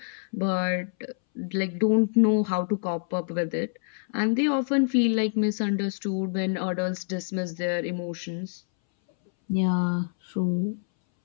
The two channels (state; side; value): silent; right; 61 dB below the other